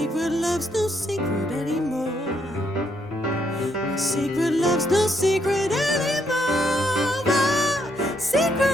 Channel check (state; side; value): normal; both; correlation 0.75